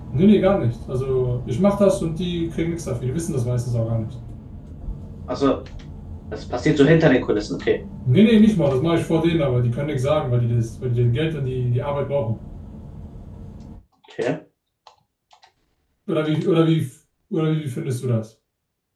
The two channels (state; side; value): identical; both; correlation 1.00